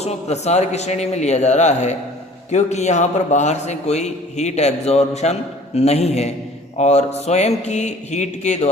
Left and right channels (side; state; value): both; normal; correlation 0.50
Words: प्रसार की श्रेणी में लिया जा रहा है, क्योंकि यहाँ पर बाहर से कोई हीट एब्जॉर्प्शन नहीं है और स्वयं की हीट के